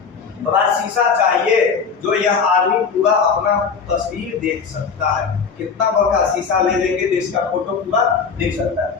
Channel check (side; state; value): right; quieter; 5.7 dB